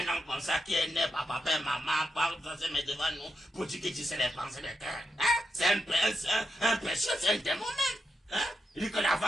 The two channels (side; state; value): both; normal; correlation 0.85